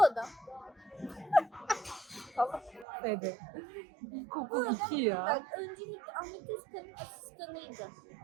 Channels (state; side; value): drops out; left; at 2.9 s